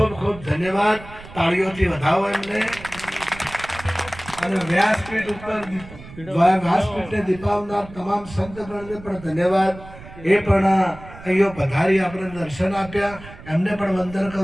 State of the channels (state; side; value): noise; right; rumble, 17 dB below the sound